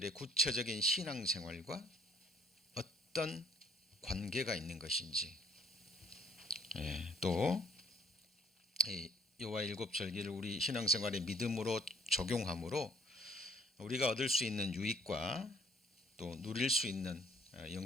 구체적인 신앙생활과 어떤 관계가 있는 것인지, 또 여호와의 7 절기를 우리 신앙생활의 믿음으로 적용함으로 우리가 얻을 수 있는 유익과 또 누릴 수 있는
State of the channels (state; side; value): normal; both; correlation 0.61